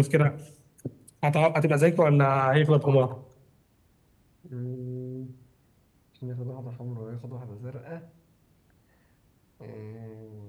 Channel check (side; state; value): both; identical; correlation 1.00